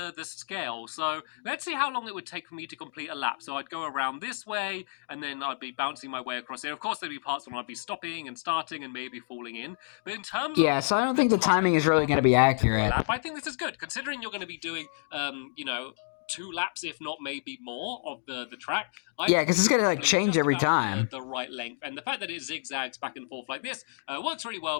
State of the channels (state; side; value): silent; right; digital silence